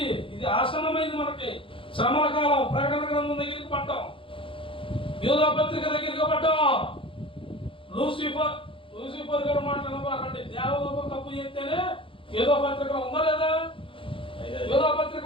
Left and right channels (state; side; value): late; right; 0.25 ms